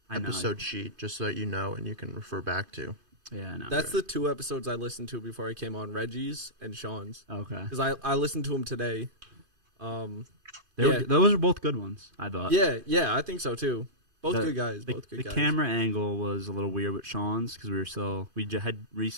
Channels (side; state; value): left; late; 2.5 ms